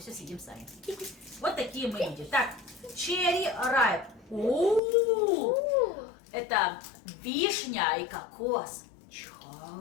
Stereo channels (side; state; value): right; drops out; at 4.8 s